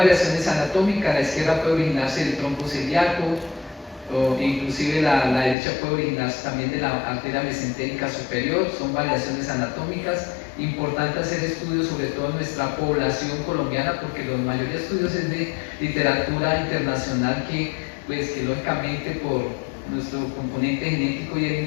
anatómicas, la izquierda puede originarse del tronco celíaco, o inclusive la derecha puede originarse también de la arteria mesentérica superior, son variaciones anatómicas. Importante hacer estudios sobre todo en nuestra población colombiana, porque la mayoría de estudios es de literatura internacional que lógicamente por nuestro componente genético y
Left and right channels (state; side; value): drops out; right; at 5.6 s